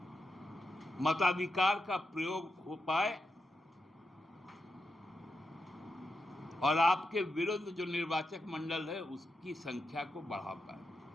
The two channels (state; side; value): normal; both; correlation 0.86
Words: मताधिकार का प्रयोग हो पाए और आपके विरुद्ध जो निर्वाचक मंडल है उसकी संख्या को बढ़ा पाए।